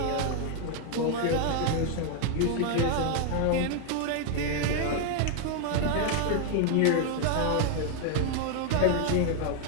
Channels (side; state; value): both; different; correlation 0.00